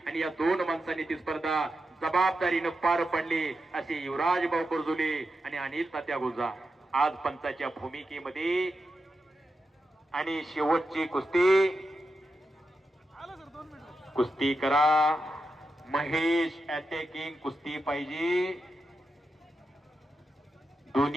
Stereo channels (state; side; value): normal; both; correlation 0.88